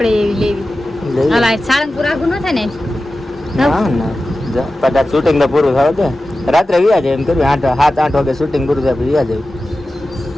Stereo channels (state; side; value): normal; both; correlation 0.94